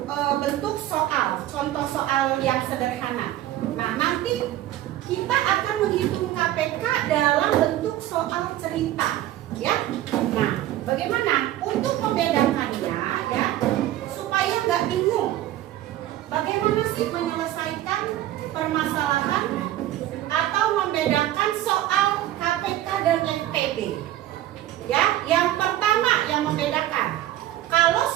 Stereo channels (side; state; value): left; quieter; 13.8 dB